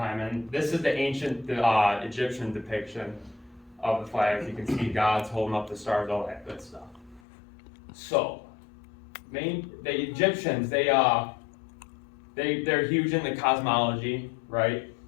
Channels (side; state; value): right; drops out; at 7.2 s